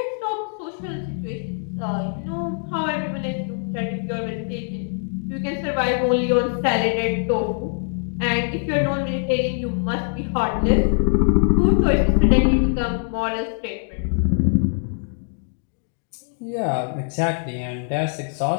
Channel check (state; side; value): silent; right; 64 dB below the other